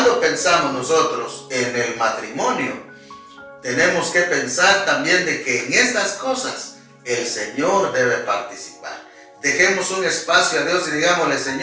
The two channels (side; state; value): both; identical; correlation 1.00